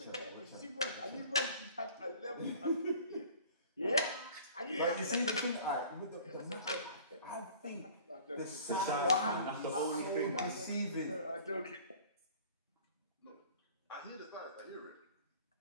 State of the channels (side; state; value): both; inverted; correlation -0.48